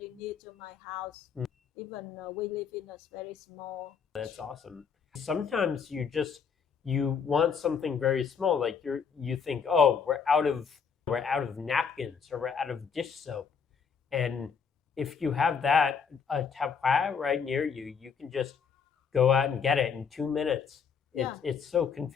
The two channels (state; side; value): quieter; right; 6.4 dB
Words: near to my house. Even we live in a very small. That's awesome. Sometimes you want something very small, like you think, oh, we're out of napkins or we're out of dish soap, and if you have that a tap khoa right near you, you can just go out and get it in 2 minutes. It's so